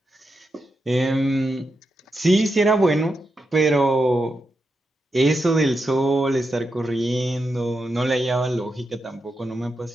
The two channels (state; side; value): normal; both; correlation 0.86